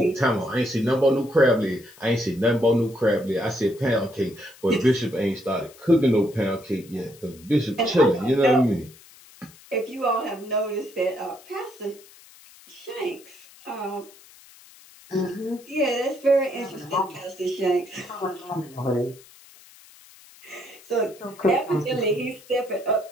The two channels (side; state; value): left; noise; hiss, 23 dB below the sound